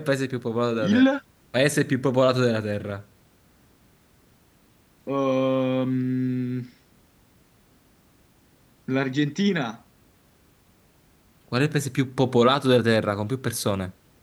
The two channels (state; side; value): identical; both; correlation 1.00